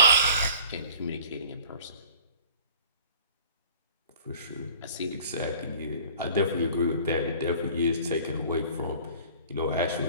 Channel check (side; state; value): both; inverted; correlation -0.48